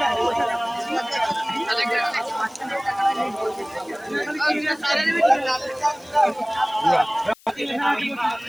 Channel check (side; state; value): left; noise; hiss, 27 dB below the sound